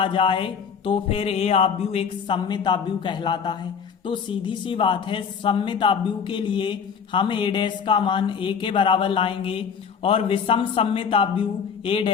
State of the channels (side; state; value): right; quieter; 6.6 dB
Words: जाए तो फिर ए अभ्यु एक सममिताभ्यु कहलाता है। तो सीधी सी बात है, सममिताभ्यु के लिए हम ए डैश का मान ए के बराबर लाएंगे और विषम सममिताभ्यु ए